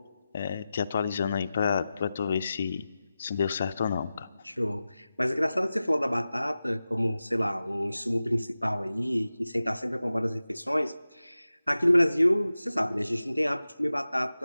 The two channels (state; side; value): inverted; both; correlation -0.94